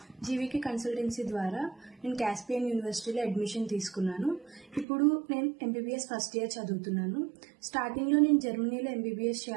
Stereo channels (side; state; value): left; drops out; at 4.9 s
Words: జీవీకే కన్సల్టెన్సీ ద్వారా నేను కాస్పియన్ యూనివర్సిటీలో అడ్మిషన్ తీసుకున్నాను. ఇప్పుడు నేను ఎంబీబీఎస్ ఫస్ట్ ఇయర్ చదువుతున్నాను. స్టార్టింగ్లో నేను జర్మనీలో ఎంబీబీఎస్